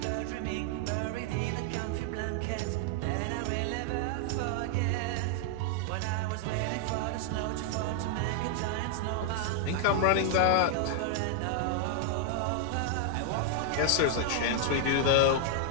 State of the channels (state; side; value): different; both; correlation 0.00